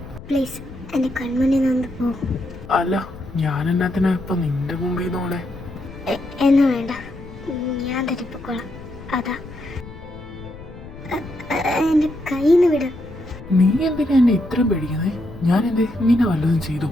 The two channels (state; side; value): noise; left; rumble, 15 dB below the sound